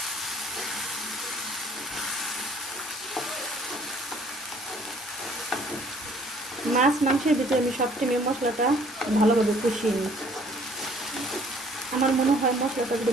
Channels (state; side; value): normal; both; correlation 0.58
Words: মাছ মাংসের ভিতরে আমি সবসময় মশলাটা ভালোভাবে কষিয়ে নিই। আমার মনে হয় মশলাটা যদি